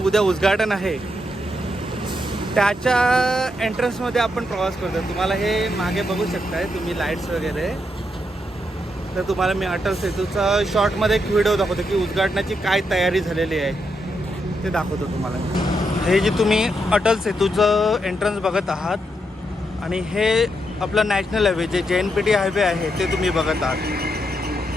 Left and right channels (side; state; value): both; normal; correlation 0.81